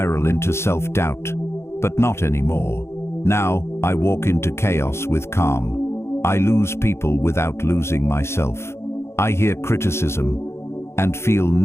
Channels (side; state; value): right; late; 0.13 ms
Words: into self-doubt. But not anymore. Now, I walk into chaos with calm. I lose people without losing myself. I hear criticism and feel